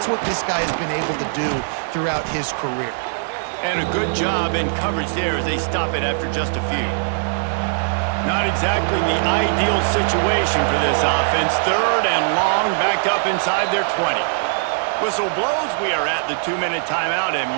what this guy has been able to do throughout his career. And a good job in coverage there as they stop it after just a few. Not exactly the ideal situation for this offense. 3rd and long, backed up inside their 20. Whistle blows, we are at the 2-minute timeout, and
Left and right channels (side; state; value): left; silent; digital silence